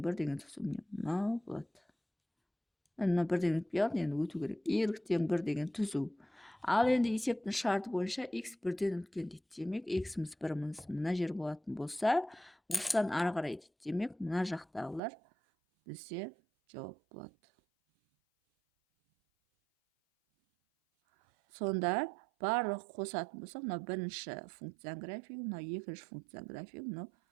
1 деген түзу мынау болады. Мына 1 деген өтпей қалды, енді өту керек. Y тең 1 деген түзу. Ал енді есептің шарты бойынша x 1-ден үлкен дейді. Демек, x-іміз 1-іміз мына жер болатын болса, осыдан ары қарай дейді. Демек, мына жақтағылар бізде жауап болады. Сонда барлық қосатын болса, мына бірінші функцияның графигі, мына екінші функцияның графигі, мына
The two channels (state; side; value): drops out; left; at 15.0 s